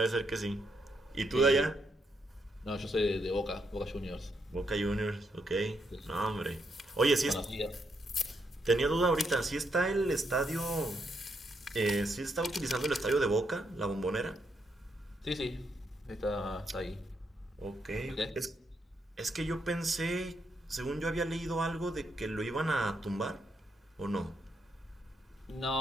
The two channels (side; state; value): both; normal; correlation 0.78